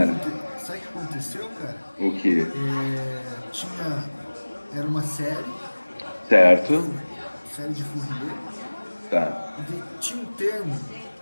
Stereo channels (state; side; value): inverted; both; correlation -1.00